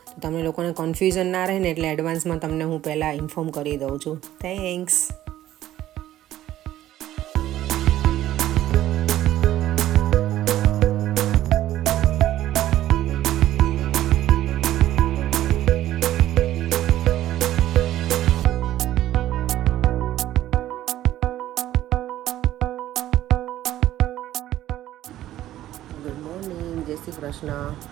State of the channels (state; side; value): quieter; left; 13.5 dB